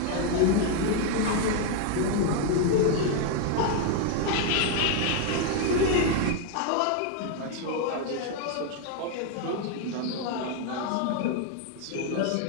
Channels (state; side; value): different; both; correlation 0.00